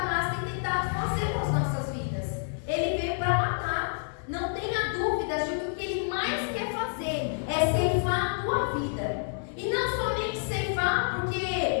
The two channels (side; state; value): right; silent; 59 dB below the other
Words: tem tentado fazer com as nossas vidas. Ele veio para matar. Não tenha dúvidas de que o que ele mais quer fazer é ceifar a tua vida. E não somente ceifar,